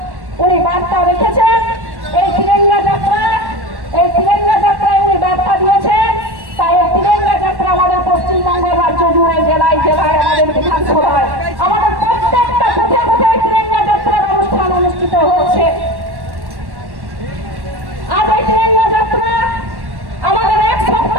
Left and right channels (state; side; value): late; left; 1.1 ms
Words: উনি বার্তা রেখেছেন এই তিরঙ্গা যাত্রায় উনি বার্তা দিয়েছেন। তাই এই তিরঙ্গা যাত্রা আমাদের পশ্চিমবঙ্গ রাজ্য জুড়ে, জেলায় জেলায়, আমাদের বিধানসভায়, আমাদের প্রত্যেকটা কোথায় কোথায় তিরঙ্গা যাত্রার অনুষ্ঠান অনুষ্ঠিত হচ্ছে। আজ এই তিরঙ্গা যাত্রা আমাদের এক